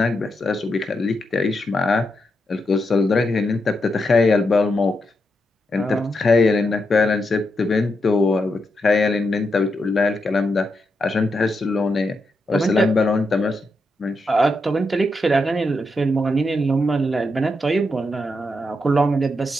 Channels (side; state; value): both; normal; correlation 0.83